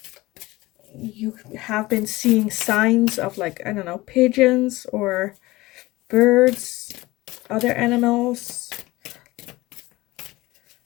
you have been seeing signs of like, I don't know, pigeons or birds, other animals,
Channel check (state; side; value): quieter; right; 19.8 dB